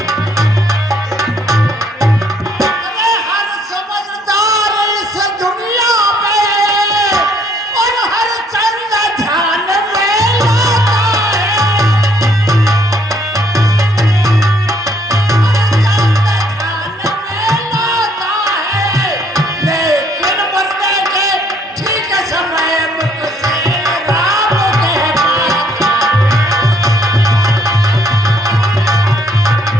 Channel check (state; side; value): normal; both; correlation 0.65